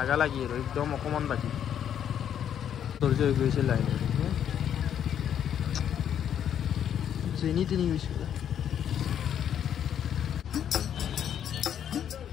লাগি আৰু একদম অকণমান বাকী ধৈৰ্য হৈ গৈছে লাহে লাহে যেনি তেনি গৈছে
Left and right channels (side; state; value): right; quieter; 9.3 dB